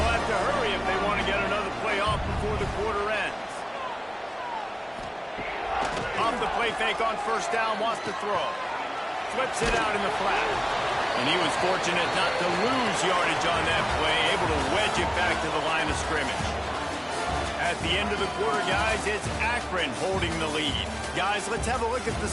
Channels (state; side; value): identical; both; correlation 1.00